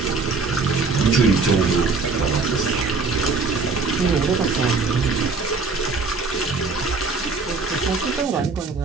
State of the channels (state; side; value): quieter; left; 4.2 dB